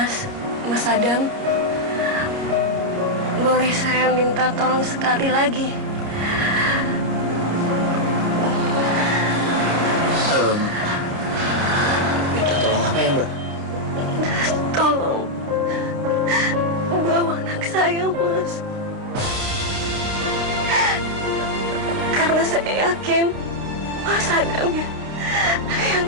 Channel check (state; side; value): late; left; 29 ms